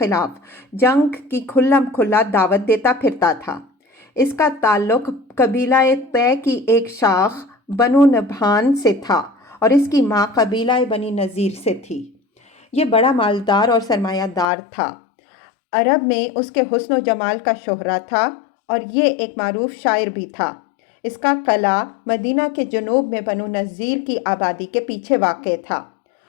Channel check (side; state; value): right; drops out; at 14.5 s